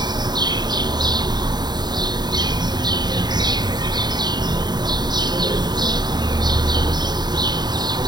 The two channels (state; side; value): late; left; 0.20 ms